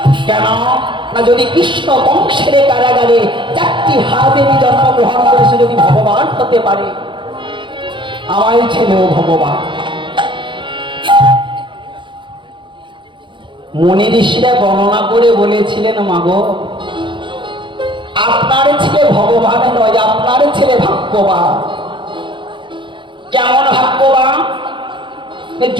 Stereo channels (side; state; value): left; late; 0.23 ms